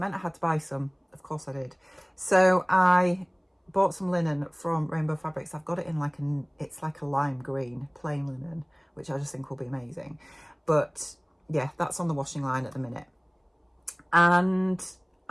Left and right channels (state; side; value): identical; both; correlation 1.00